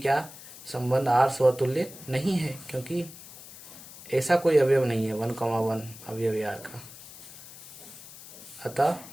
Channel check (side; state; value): left; noise; hiss, 16 dB below the sound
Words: संबंध r स्वतुल्य नहीं है, क्योंकि ऐसा कोई अवयव नहीं है 1,1 अवयव है r का। अतः